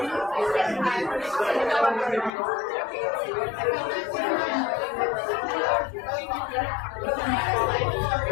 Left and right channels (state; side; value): drops out; right; at 2.3 s